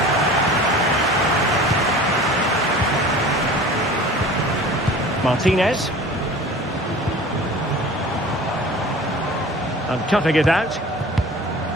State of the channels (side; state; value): both; normal; correlation 0.41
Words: Martinez. And cutting it out.